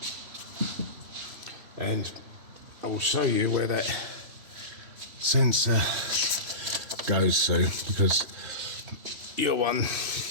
and I will show you where that sensor goes to, because your one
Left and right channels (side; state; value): left; late; 3.0 ms